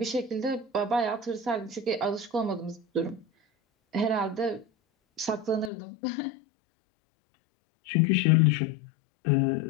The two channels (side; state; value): right; drops out; at 5.7 s